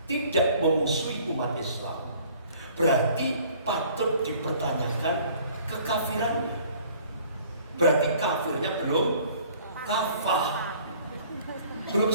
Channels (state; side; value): inverted; both; correlation -0.54